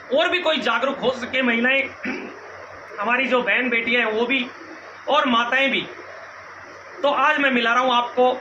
और भी कोई जागरूक हो सके। महिलाएं, हमारी जो बहन बेटियां हैं वो भी और माताएं भी। तो आज मैं मिला रहा हूँ आपको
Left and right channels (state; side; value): identical; both; correlation 1.00